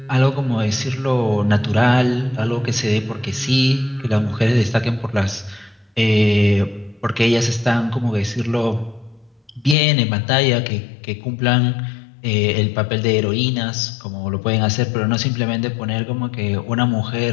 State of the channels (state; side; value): drops out; right; at 9.8 s